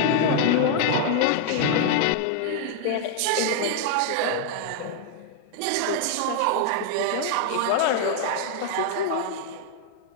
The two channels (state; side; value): different; both; correlation 0.00